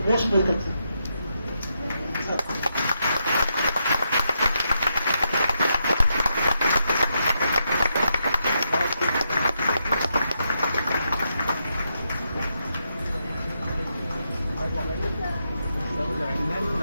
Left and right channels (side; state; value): both; inverted; correlation -0.82